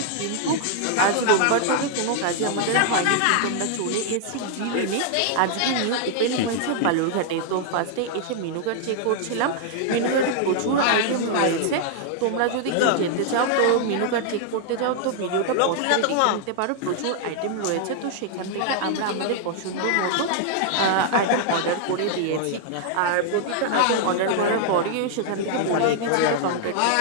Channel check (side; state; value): both; different; correlation -0.01